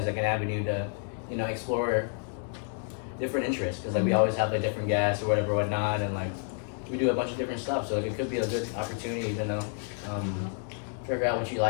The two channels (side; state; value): right; silent; 58 dB below the other